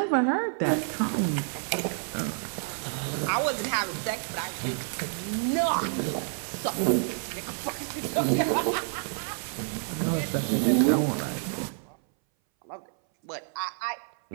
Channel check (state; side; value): silent; left; 59 dB below the other